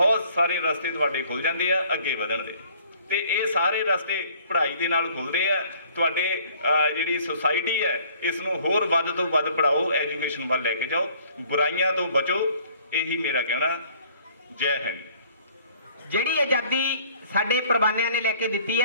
ਸਾਰੇ ਰਸਤੇ ਤੁਹਾਡੇ ਖੁੱਲ ਜਾਂਦੇ ਆ ਅੱਗੇ ਵਧਣ ਦੇ, ਤੇ ਇਹ ਸਾਰੇ ਰਸਤੇ ਪੜ੍ਹਾਈ ਦੇ ਨਾਲ ਖੁੱਲਦੇ ਆ। ਤੁਹਾਡੇ ਜਿਹੜੀ ਸੁਸਾਇਟੀ ਹੈ ਇਸ ਨੂੰ ਹੋਰ ਵੱਧ ਤੋਂ ਵੱਧ ਪੜ੍ਹਾਓ, ਐਜੂਕੇਸ਼ਨ ਵੱਲ ਲੈ ਕੇ ਜਾਓ, ਬੁਰਾਈਆਂ ਤੋਂ ਬਚੋ, ਇਹੀ ਮੇਰਾ ਕਹਿਣਾ। ਜੈ ਹਿੰਦ। ਜਿਹੜੀ ਆਜ਼ਾਦੀ ਸਾਡੇ ਪ੍ਰਵਾਨਿਆਂ ਨੇ ਲੈ ਕੇ ਦਿੱਤੀ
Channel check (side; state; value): both; inverted; correlation -0.57